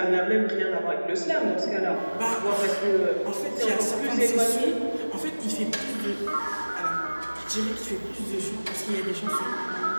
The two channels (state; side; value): inverted; both; correlation -1.00